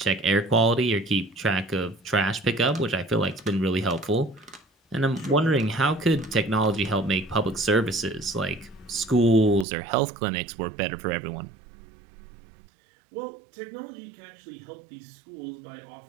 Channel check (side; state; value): left; drops out; at 9.7 s